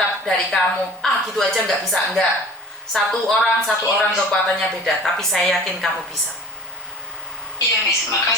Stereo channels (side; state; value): both; normal; correlation 0.41